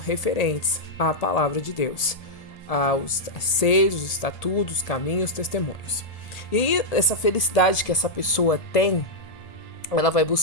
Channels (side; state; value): right; late; 1.8 ms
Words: à palavra de Deus, aos seis, os estatutos, os caminhos, os testemunhos. E essa felicidade que essa pessoa tem, ela vai